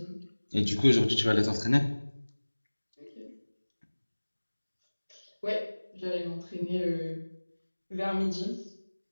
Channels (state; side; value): inverted; both; correlation -1.00